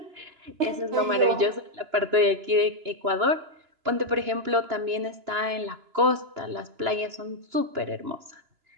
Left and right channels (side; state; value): left; late; 2.9 ms